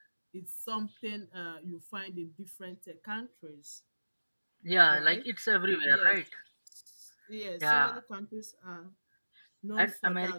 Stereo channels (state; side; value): inverted; both; correlation -1.00